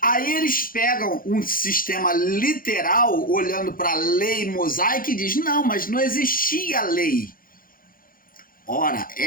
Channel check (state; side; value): late; right; 0.41 ms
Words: eles pegam um sistema literal, olhando para a lei mosaica e diz, não, mas não existia lei. Ora,